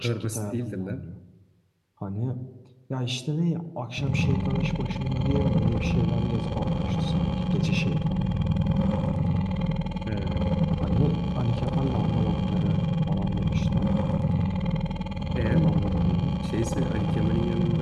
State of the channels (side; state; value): both; identical; correlation 1.00